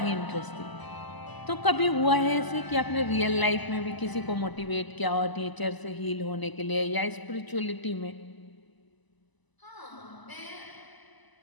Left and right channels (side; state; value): right; late; 1.0 ms